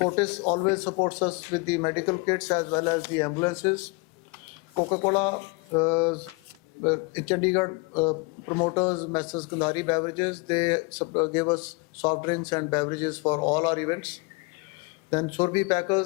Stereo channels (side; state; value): right; quieter; 29.3 dB